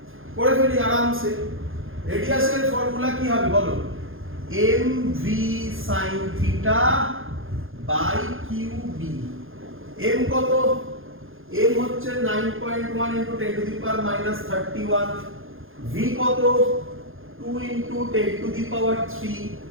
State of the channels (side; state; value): left; late; 0.60 ms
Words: করে ফেলি আরামসে। রেডিয়াসের ফর্মুলা কি হবে বলো? mv sin theta by qb। m কত? m হচ্ছে 9.1 into 10 to the power minus 31। v কত? 2 into 10 to the power 3